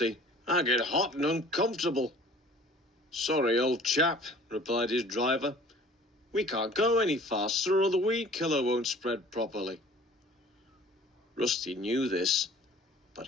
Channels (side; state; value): both; normal; correlation 0.49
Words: I get hot and uncomfortable. Sorry, old chap, replied his driver. We can't go any faster or the weed killer won't spread properly. Rusty knew this, but